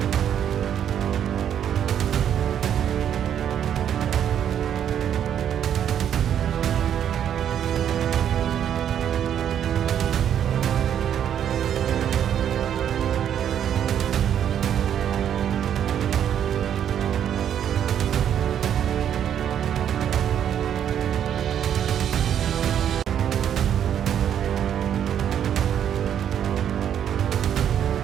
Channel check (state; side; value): quieter; left; 9.5 dB